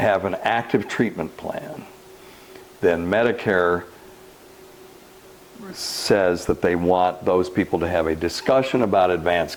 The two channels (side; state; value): both; identical; correlation 1.00